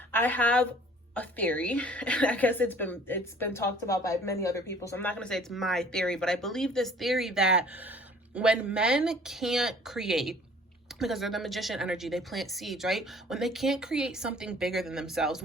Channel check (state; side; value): normal; both; correlation 0.52